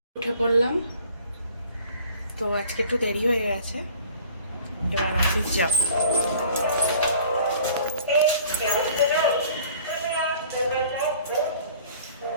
উঠে পড়লাম, তো আজকে একটু দেরি হয়ে গেছে। এবার অফিস যাব।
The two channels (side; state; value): both; inverted; correlation -0.50